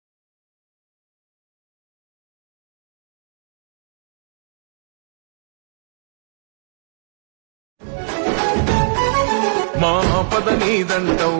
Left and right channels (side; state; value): left; silent; 63 dB below the other